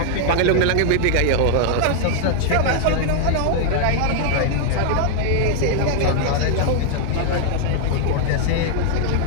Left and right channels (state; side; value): different; both; correlation 0.00